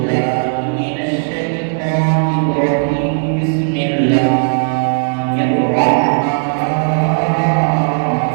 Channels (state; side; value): silent; left; 69 dB below the other